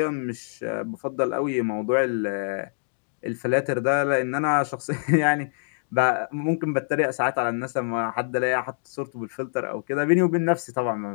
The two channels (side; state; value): right; silent; digital silence